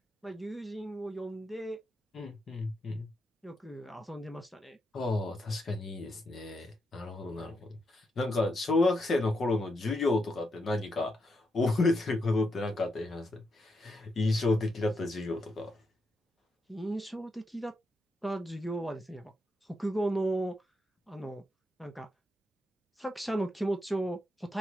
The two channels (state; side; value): normal; both; correlation 0.83